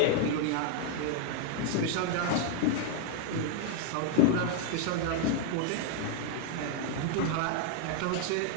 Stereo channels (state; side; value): different; both; correlation 0.00